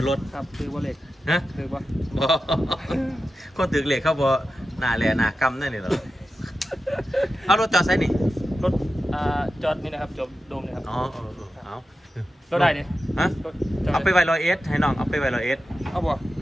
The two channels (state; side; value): normal; both; correlation 0.91